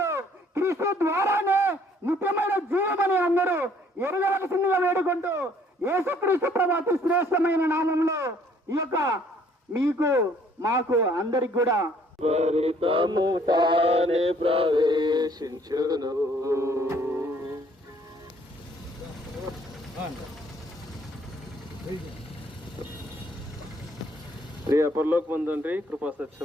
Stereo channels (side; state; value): both; normal; correlation 0.61